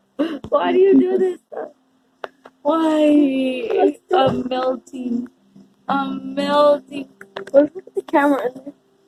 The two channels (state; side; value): identical; both; correlation 1.00